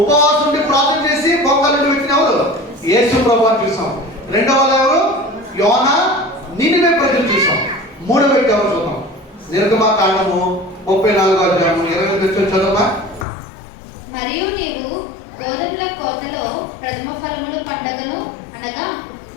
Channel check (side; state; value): right; drops out; at 13.2 s